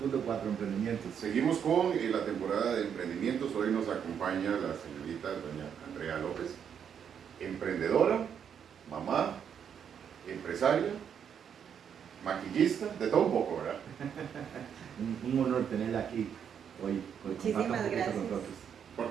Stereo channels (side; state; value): left; quieter; 8.0 dB